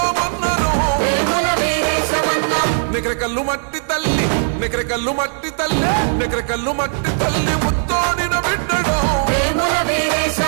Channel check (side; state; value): left; silent; 57 dB below the other